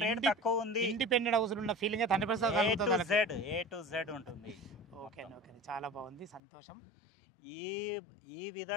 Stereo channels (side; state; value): right; drops out; at 6.4 s